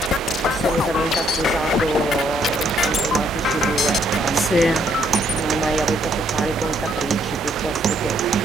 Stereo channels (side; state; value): both; normal; correlation 0.69